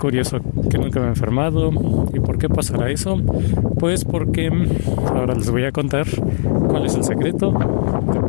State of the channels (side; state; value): right; silent; digital silence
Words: que nunca me he enfermado. ¿Y por qué pasará eso? Pues porque ahora les voy a contar cuál es el secreto de